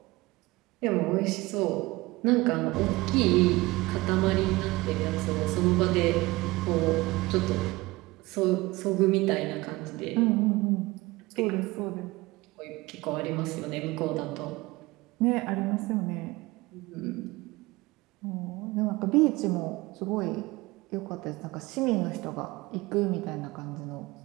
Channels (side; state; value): left; quieter; 20.9 dB